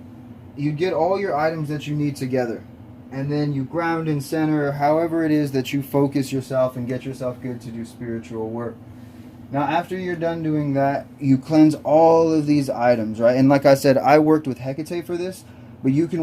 you get all your items that you need together, and then you ground and center however it is that you focus yourself and get yourself good to do spiritual work. Now after you're done doing that, you cleanse all of these items, right? And like I said, I worked with Hecate for this, but you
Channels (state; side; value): identical; both; correlation 1.00